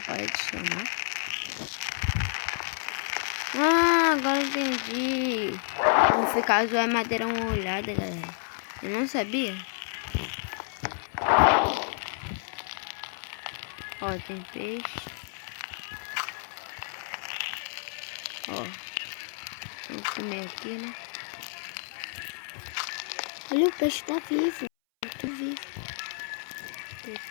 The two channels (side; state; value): right; silent; 58 dB below the other